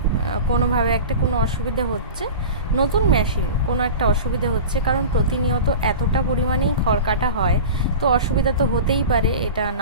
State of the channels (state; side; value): inverted; both; correlation -0.32